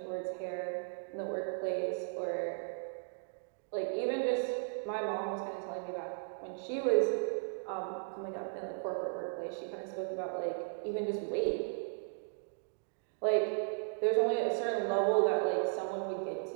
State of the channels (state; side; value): silent; left; digital silence